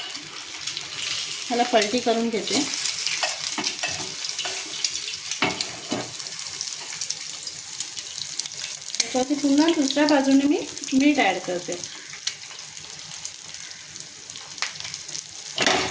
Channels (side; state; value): both; identical; correlation 1.00